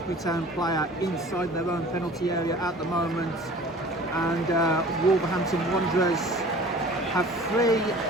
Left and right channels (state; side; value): normal; both; correlation 0.45